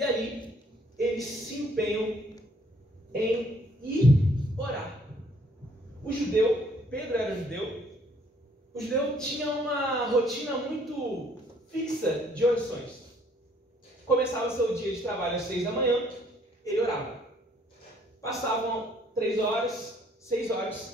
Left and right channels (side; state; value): both; normal; correlation 0.63